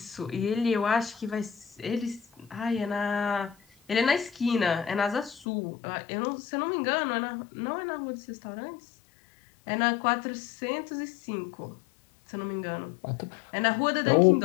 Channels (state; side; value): drops out; right; at 5.5 s